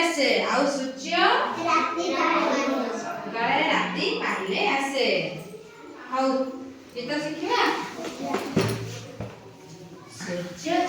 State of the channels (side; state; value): both; identical; correlation 1.00